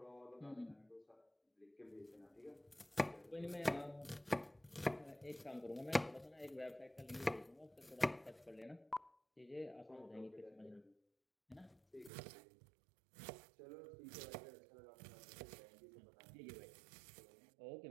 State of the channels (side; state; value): left; drops out; at 12.1 s